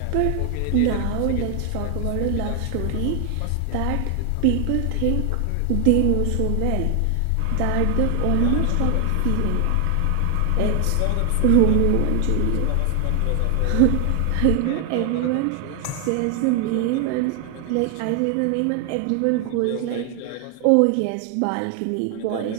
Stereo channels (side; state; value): both; different; correlation 0.00